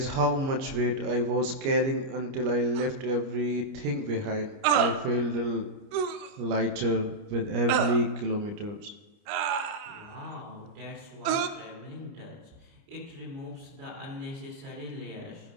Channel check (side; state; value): left; late; 29 ms